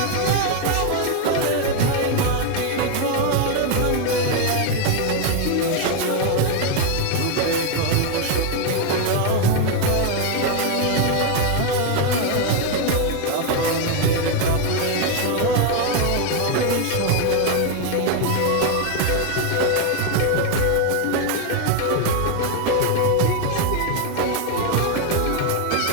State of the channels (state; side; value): different; both; correlation 0.01